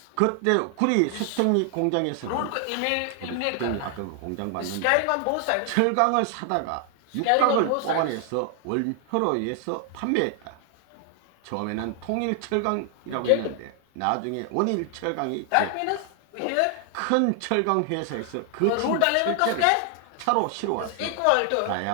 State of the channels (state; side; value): different; both; correlation 0.00